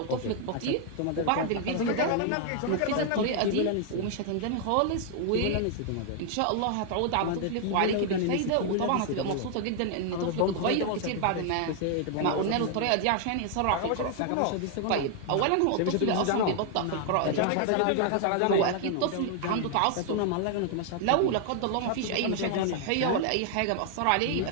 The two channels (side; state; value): both; different; correlation 0.00